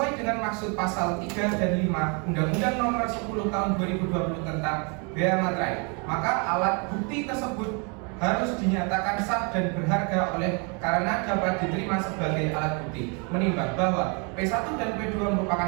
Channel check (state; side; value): quieter; left; 34.4 dB